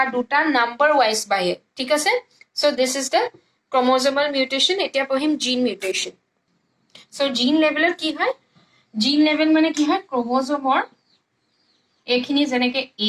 দুটা নাম্বাৰ ৱাইজ বাঢ়ে ঠিক আছে চ' দিছ ইজ দ্য ক্ৰম'জ'মেল মিউটেশ্যন এতিয়া পঢ়িম জিন মিউটেশ্যন চ' জিন লেভেলত কি হয় জিন লেভেল মানে কি হয় ক্ৰম'জ'মৰ এইখিনি যেনেকৈ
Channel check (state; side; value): identical; both; correlation 1.00